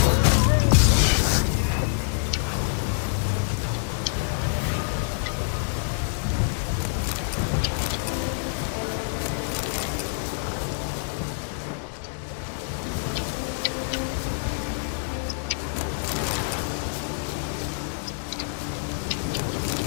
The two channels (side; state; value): right; silent; digital silence